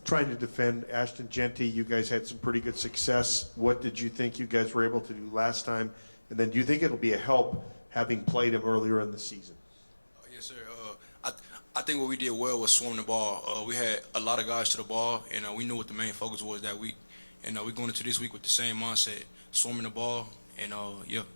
Trying to defend Ashton Jeanty, you guys had some pretty good success. What did you think you guys were able to do last time? And then do you think it'll be a help having played him earlier in the season? Yes, sir. I think what we did well was swarm the ball. We had a lot of guys to the ball, and we knew what the main focus was that week. And we're going into this week with the same mindset, swarming the ball, and yeah.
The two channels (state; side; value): inverted; both; correlation -1.00